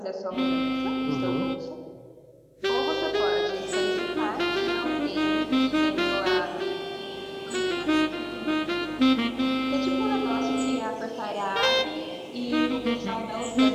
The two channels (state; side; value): identical; both; correlation 1.00